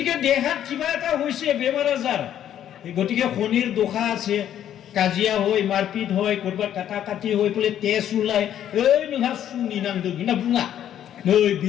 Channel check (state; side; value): quieter; right; 10.6 dB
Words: দেহাত কিবা এটা হইছে বেমাৰ আজাৰ গতিকে শনিৰ দোষা আছে কাজিয়া হয় মাৰপিট হয় কৰবা কাটা কাটি হৈ পলে তেজ ওলাই এই নহা সুনি নাংদোं না বুঙা नै